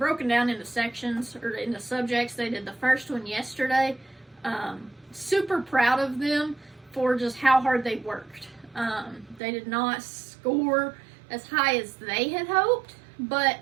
down into sections, or into subjects. They did the first one yesterday. Super proud of them for just how hard they worked. They did not score as high as they had hoped, but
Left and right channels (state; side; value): drops out; left; at 9.4 s